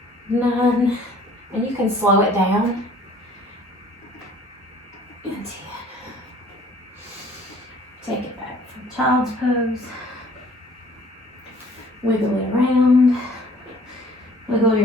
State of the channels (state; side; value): normal; both; correlation 0.54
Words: 9, and you can slow it down, and 10. Take it back from child's pose. Wiggle it around. Wiggle